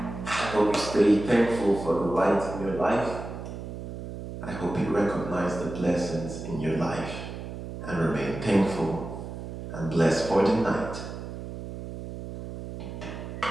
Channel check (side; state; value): right; noise; hum, 9 dB below the sound